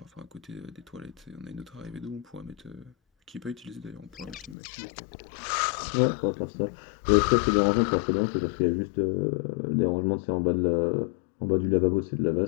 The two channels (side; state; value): right; drops out; at 4.5 s